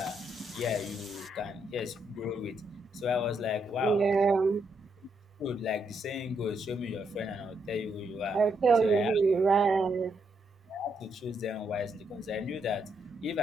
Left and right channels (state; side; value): normal; both; correlation 0.78